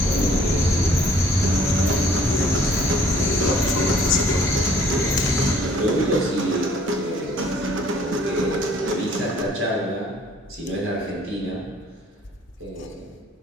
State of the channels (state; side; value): normal; both; correlation 0.59